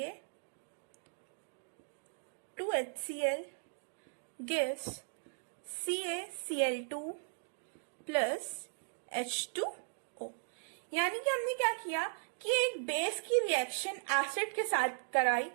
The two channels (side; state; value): left; silent; digital silence